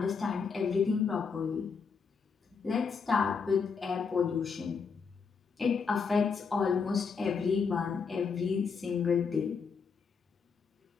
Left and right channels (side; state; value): right; quieter; 5.6 dB